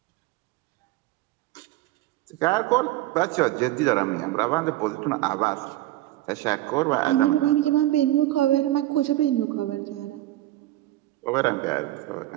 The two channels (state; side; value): quieter; left; 15.6 dB